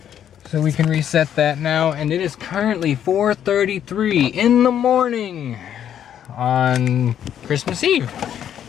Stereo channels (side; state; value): right; quieter; 9.8 dB